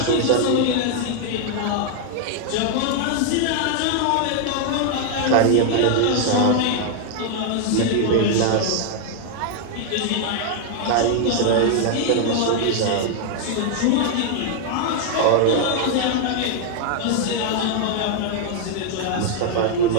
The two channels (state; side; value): different; both; correlation 0.00